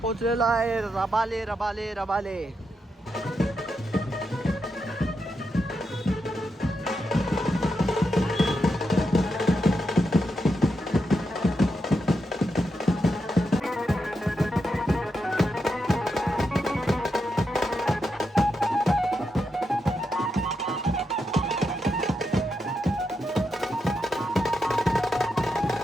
पोचलेलो आहे रबाले रबाले रबाले.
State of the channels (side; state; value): both; normal; correlation 0.84